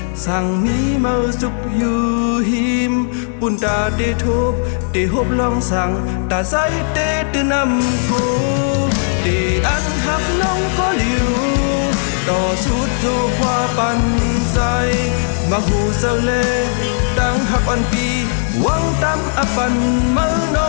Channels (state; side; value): silent; right; 60 dB below the other